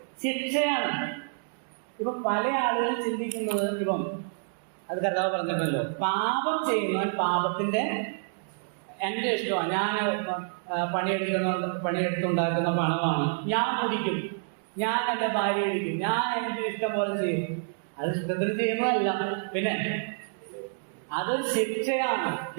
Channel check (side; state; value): left; silent; digital silence